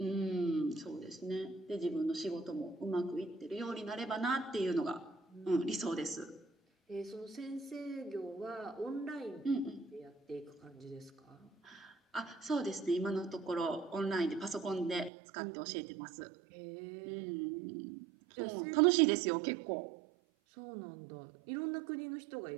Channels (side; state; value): left; drops out; at 15.1 s